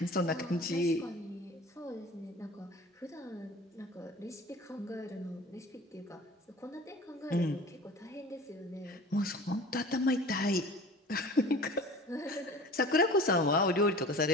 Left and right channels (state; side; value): normal; both; correlation 0.41